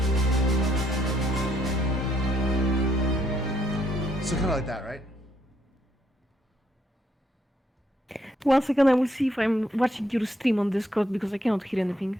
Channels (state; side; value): normal; both; correlation 0.72